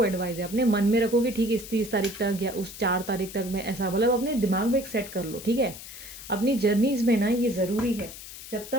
एडवाइस है, अपने मन में रखो कि ठीक इस 30 तारीख तक या उस 4 तारीख तक मैं ऐसा, मतलब अपने दिमाग में एक सेट कर लो, ठीक है। अपनी जर्नीज़ में ना ये ज़रूरी है, जब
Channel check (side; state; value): left; noise; hiss, 13 dB below the sound